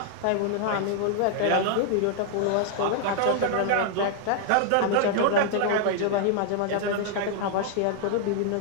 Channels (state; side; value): different; both; correlation 0.00